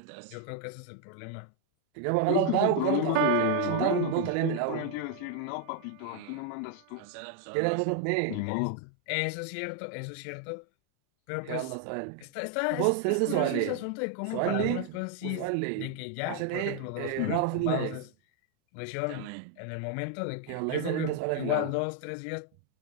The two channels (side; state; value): both; different; correlation 0.00